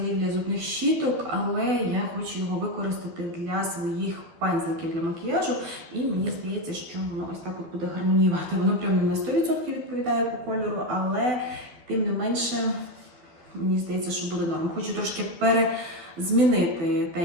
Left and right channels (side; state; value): left; late; 12 ms